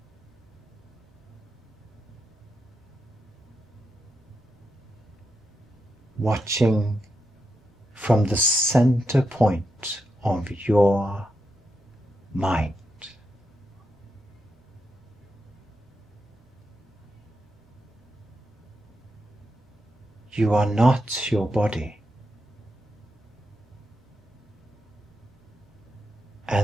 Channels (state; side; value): normal; both; correlation 0.85